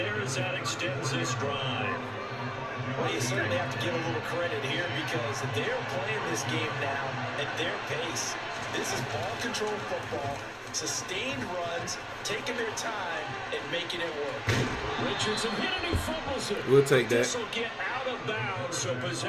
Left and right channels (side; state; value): both; identical; correlation 1.00